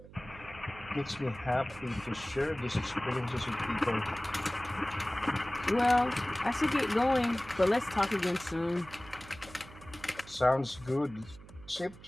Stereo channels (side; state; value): right; noise; hum, 19 dB below the sound